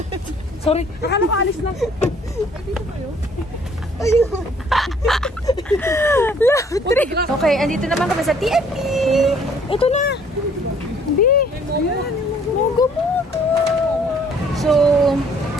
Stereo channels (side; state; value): both; normal; correlation 0.59